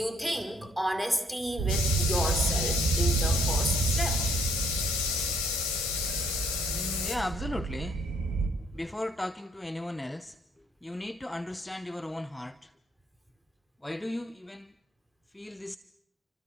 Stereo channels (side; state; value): both; normal; correlation 0.65